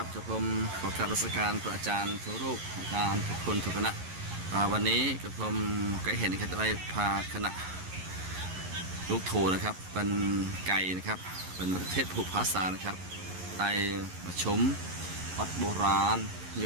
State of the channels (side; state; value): left; late; 11 ms